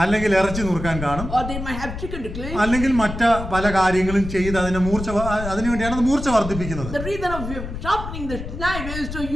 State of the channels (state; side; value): noise; left; rumble, 7 dB below the sound